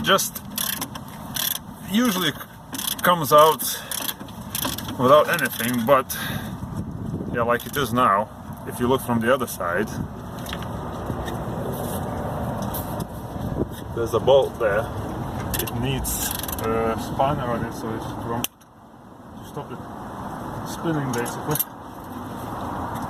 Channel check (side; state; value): both; identical; correlation 1.00